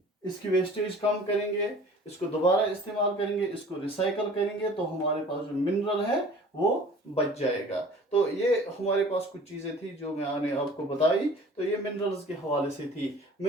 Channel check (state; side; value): normal; both; correlation 0.46